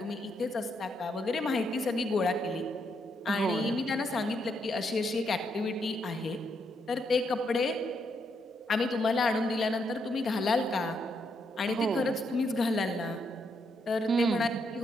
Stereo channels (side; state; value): both; normal; correlation 0.78